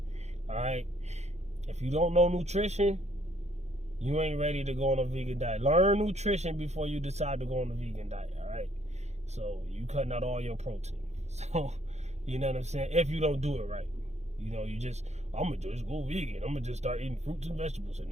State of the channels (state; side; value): late; left; 0.32 ms